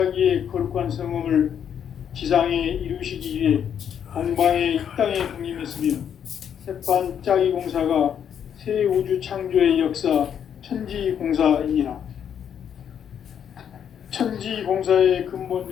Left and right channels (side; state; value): right; quieter; 8.6 dB